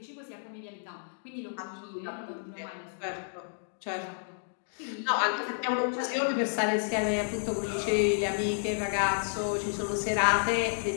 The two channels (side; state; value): right; silent; digital silence